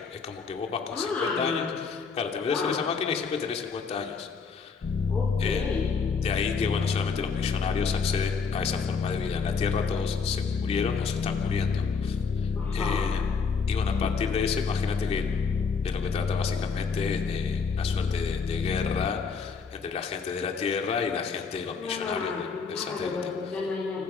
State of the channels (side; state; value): right; quieter; 5.3 dB